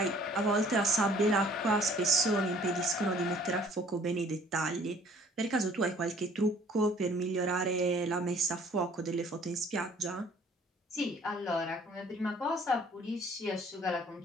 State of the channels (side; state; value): both; normal; correlation 0.56